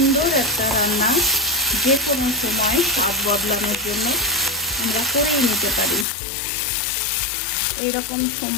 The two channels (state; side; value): drops out; right; at 6.1 s